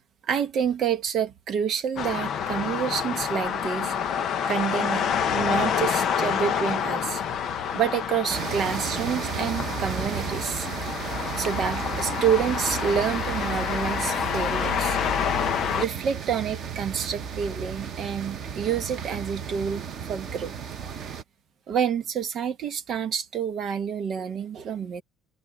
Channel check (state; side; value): normal; both; correlation 0.51